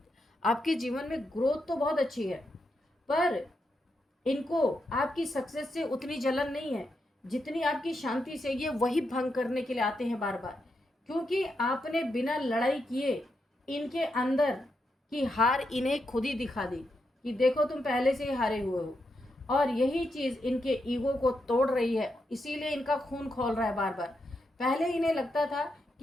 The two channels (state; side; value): normal; both; correlation 0.84